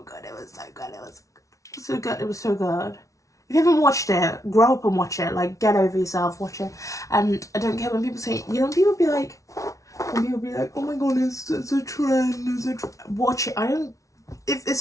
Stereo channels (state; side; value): late; right; 0.16 ms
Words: good. It was so good. If you haven't watched it, grow up and watch it. Like, get over yourself, watch it. And I don't care when people say, you know, people be like, oh my god, it's a trend, watch it. If